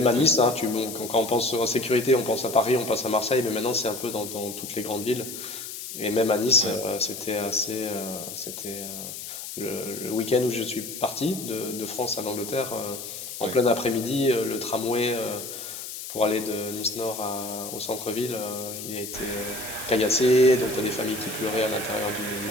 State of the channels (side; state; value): left; noise; hiss, 9 dB below the sound